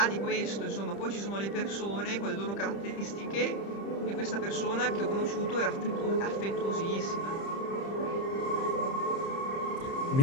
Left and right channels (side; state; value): right; late; 30 ms